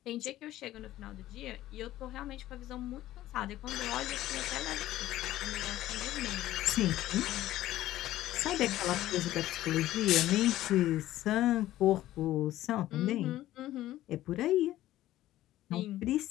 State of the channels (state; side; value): quieter; right; 14.6 dB